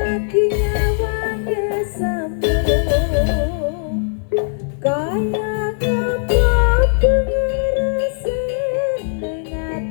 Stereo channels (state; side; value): silent; right; 62 dB below the other